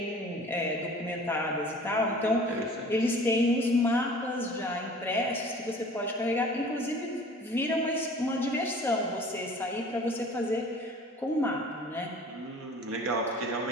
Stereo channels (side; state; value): both; normal; correlation 0.46